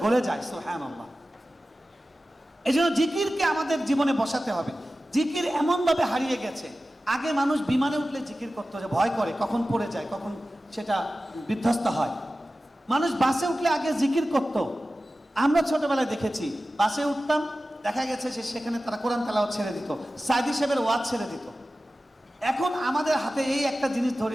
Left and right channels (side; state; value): both; normal; correlation 0.95